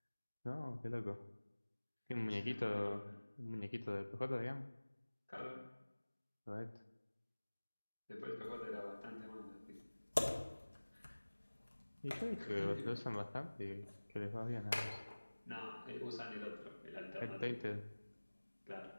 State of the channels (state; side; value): inverted; both; correlation -1.00